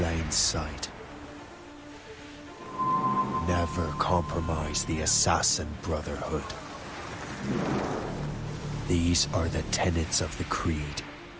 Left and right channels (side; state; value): both; identical; correlation 1.00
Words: sight. Never compromise the assassin brotherhood. These are the tenets of the creed,